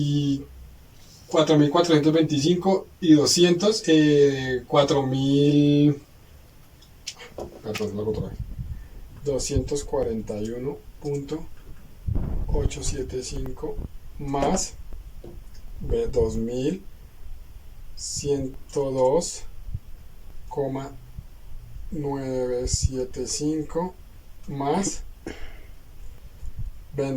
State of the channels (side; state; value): both; identical; correlation 1.00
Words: 4.425 y 200, 4.000, perdón, lo hago otra vez. 241.875 más 2.000 102,975 más